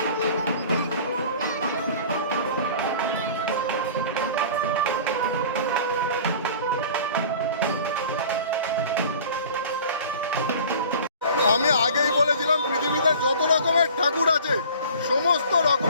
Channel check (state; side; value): inverted; both; correlation -0.43